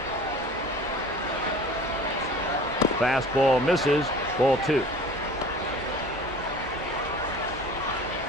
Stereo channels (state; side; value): normal; both; correlation 0.43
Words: Fastball misses, ball 2.